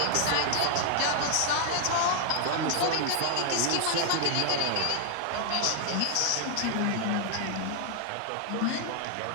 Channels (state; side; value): different; both; correlation 0.00